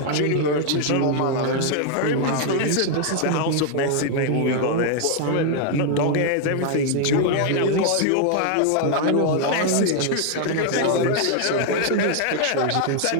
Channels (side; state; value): both; different; correlation 0.00